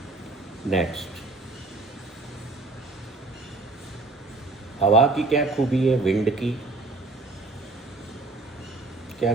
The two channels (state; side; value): quieter; left; 3.3 dB